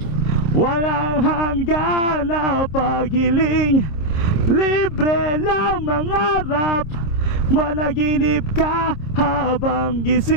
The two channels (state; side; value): late; right; 26 ms